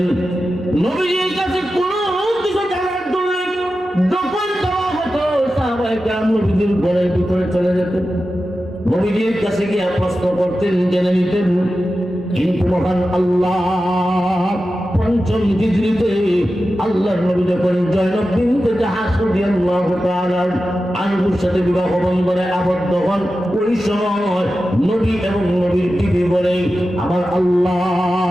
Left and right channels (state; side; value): normal; both; correlation 0.92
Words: নবীর কাছে কোনো কিছু জানার জন্য যখন যাওয়া হতো, সাহাবায়ে কেরাম নবীর ঘরের ভিতরে চলে যেতেন, নবীর কাছে গিয়ে প্রশ্ন করতেন, জেনে নিতেন। কিন্তু মহান আল্লাহ পঞ্চম হিজরিতে আল্লাহর নবী যখন জয়নব বিনতে জাহাশ রাদিয়াল্লাহু তাআলা আনহুর সাথে বিবাহ বন্ধনে আবদ্ধ হন, ওই সময় নবী এবং নবীর বিবি বলে আমার